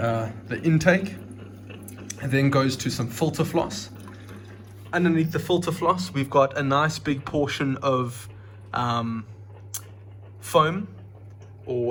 intake. It then goes to some filter floss. Underneath the filter floss, we've got a nice big portion of foam,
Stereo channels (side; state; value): both; identical; correlation 1.00